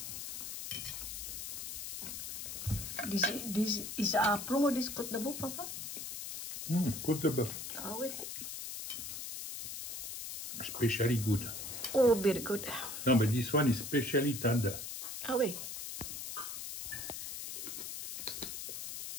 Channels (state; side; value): noise; left; hiss, 7 dB below the sound